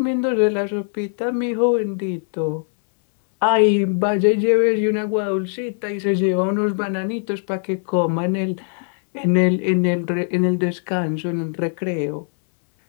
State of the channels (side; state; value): right; silent; 62 dB below the other